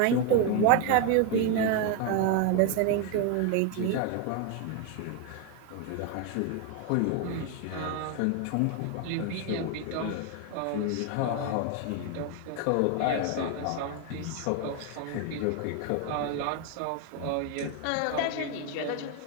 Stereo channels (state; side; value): different; both; correlation 0.01